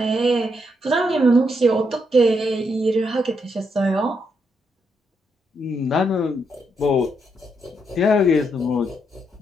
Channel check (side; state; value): both; normal; correlation 0.78